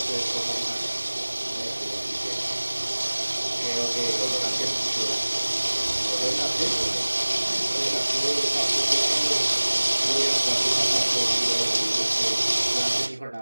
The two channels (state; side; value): inverted; both; correlation -1.00